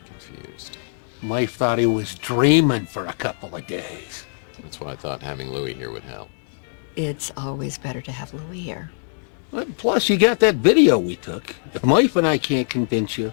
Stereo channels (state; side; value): silent; right; 64 dB below the other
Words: confused. Life thought he was dreaming for a couple of days. That's why I thought having Louis here would help. It's always better to have Louis here. Plus, you got that video we took. If Life and I can't convince you,